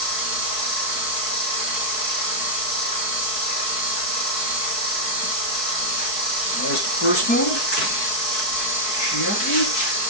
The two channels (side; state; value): right; late; 4.6 ms